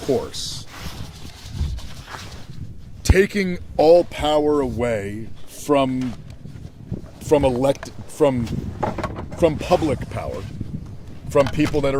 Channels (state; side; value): identical; both; correlation 1.00